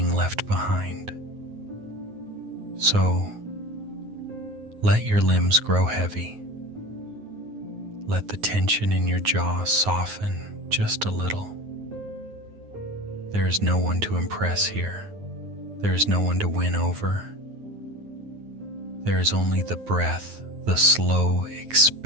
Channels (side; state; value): left; late; 9.5 ms